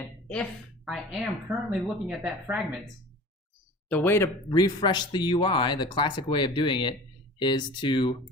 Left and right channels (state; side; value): normal; both; correlation 0.41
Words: if I am currently looking at that fragment, the way to refresh the UI, the classic way of doing it, is to